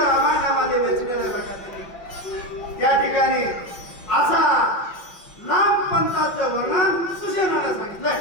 रामायणामध्ये वेचलेलं प्रकारे या ठिकाणी असा लांब पंथाचं वर्णन सुशेनानं सांगितलंय.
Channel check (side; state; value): right; late; 5.5 ms